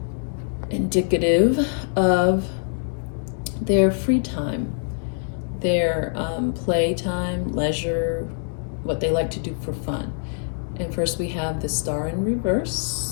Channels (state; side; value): silent; right; digital silence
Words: indicative of their free time, their playtime, leisure, what they like to do for fun. And first we have the Star in